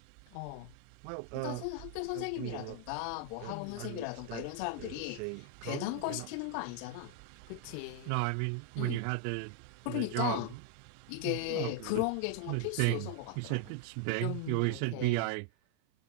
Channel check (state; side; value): different; both; correlation 0.00